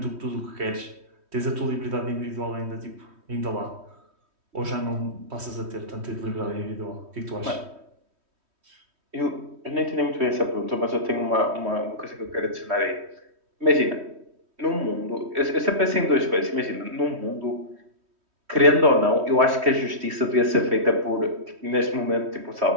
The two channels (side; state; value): left; late; 3.1 ms